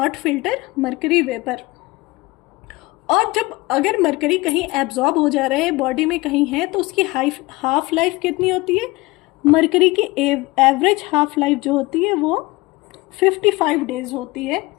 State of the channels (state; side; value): quieter; right; 22.1 dB